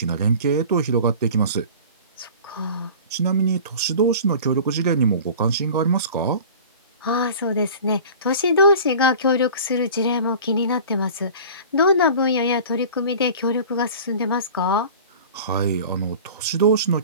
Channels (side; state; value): both; inverted; correlation -0.40